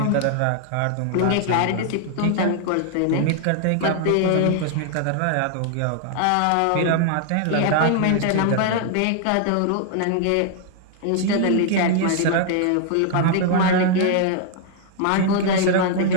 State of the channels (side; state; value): both; different; correlation 0.00